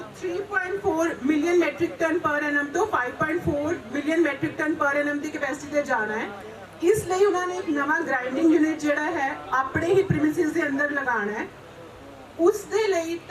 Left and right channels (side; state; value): both; identical; correlation 1.00